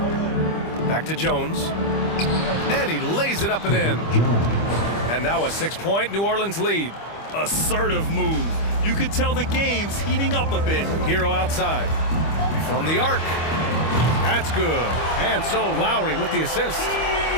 Back to Jones. And he lays it up and in. And now a 6-point New Orleans lead. Assertive move. You can tell the game's heating up a bit. Hero outside. From the arc. That's good. And so Lowry with the assist.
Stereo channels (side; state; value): right; late; 25 ms